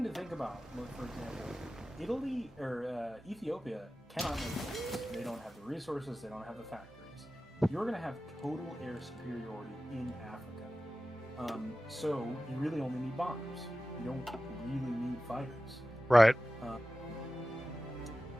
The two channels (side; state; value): both; normal; correlation 0.95